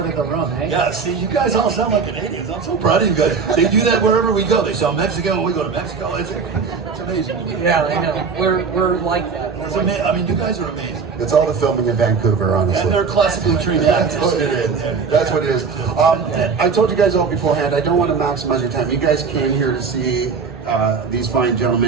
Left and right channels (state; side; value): quieter; left; 5.4 dB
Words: of the room, eh? Yeah, see, you guys all sound like Canadians. I'm so proud of you guys. They do that wherever we go. They sound Mexican when we go to Mexico. It's amazing. Yeah, I know. We're like that. It's amazing. I mean, you guys are amazing. It's all the filming in Vancouver, honestly. And they're classically trained That's actors. what it is. That's what it is. I told you guys all beforehand, I don't want to maximize your time. You guys came here to see these fine